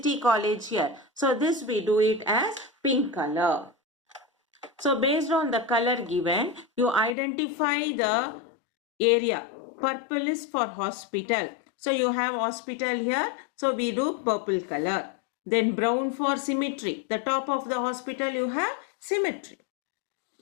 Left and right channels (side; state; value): right; drops out; at 7.2 s